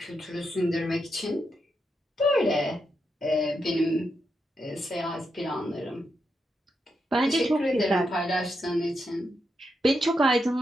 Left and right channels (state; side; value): normal; both; correlation 0.84